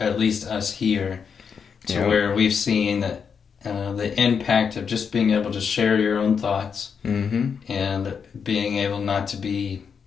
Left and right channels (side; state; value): right; quieter; 6.5 dB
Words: least us here, to where we've seen the impact of just being able to share your own thoughts and being able not to be,